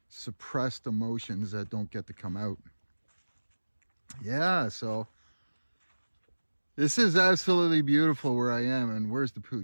suppressed emotions that don't get to come out. Yeah, so this is absolutely beautiful where I am. And where's the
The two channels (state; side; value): inverted; both; correlation -1.00